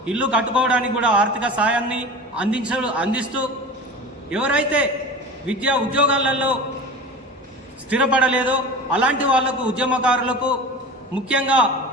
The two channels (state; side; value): normal; both; correlation 0.34